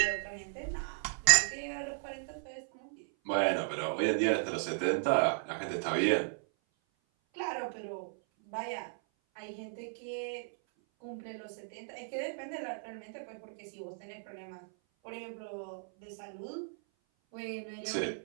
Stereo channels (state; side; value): silent; left; 54 dB below the other